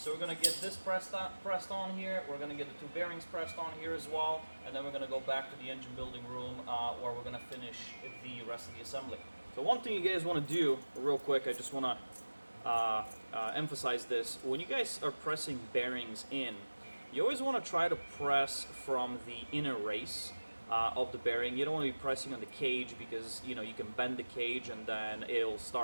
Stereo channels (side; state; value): both; inverted; correlation -1.00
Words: we're going to get this pressed on here, we're going to get the 2 bearings pressed on here as well, and then we're going to go back to the engine building room where we're going to finish the rest of the assembly. So one thing you guys want to do real quick, I just want to emphasize this. When you guys are pressing bearings in, you always want to try to press from the inner race of the bearing. You don't want to be pressing on the cage because you can bend the cage and then it'll